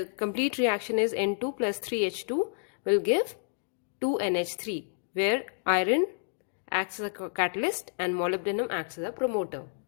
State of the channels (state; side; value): silent; right; digital silence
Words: complete reaction is N2 plus 3H2 will give 2NH3, where iron acts as a catalyst and molybdenum acts as a promoter.